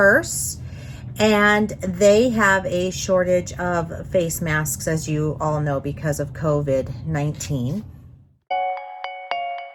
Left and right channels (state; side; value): identical; both; correlation 1.00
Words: and they have a shortage of face masks, as you all know, because of COVID-19.